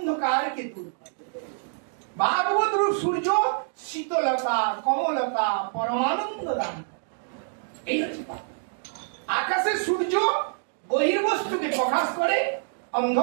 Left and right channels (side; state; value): left; silent; digital silence